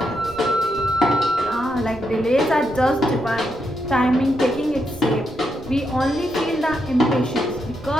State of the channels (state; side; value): noise; right; rumble, 18 dB below the sound